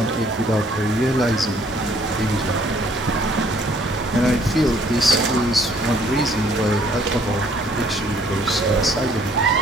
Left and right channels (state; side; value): normal; both; correlation 0.61